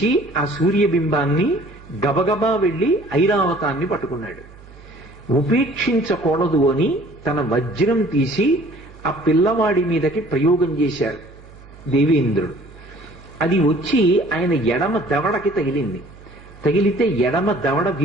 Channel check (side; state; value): right; noise; hum, 21 dB below the sound